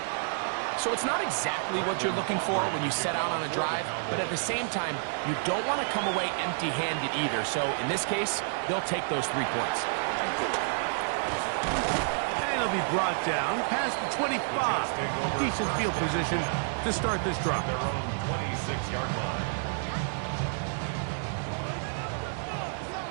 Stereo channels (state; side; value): silent; left; digital silence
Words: So it's not exactly what you're looking for when you set out on a drive, but at the same time, you don't want to come away empty-handed either. So in this case, they'll take those 3 points. And he'll be brought down past the 25. Decent field position to start this drive. Their own 26-yard line.